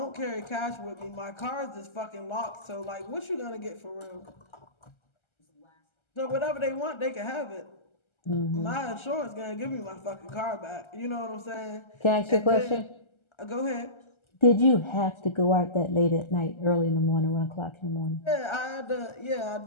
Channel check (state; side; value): late; right; 1.3 ms